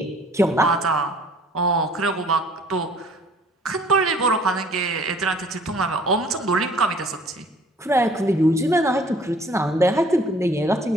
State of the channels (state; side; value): normal; both; correlation 0.55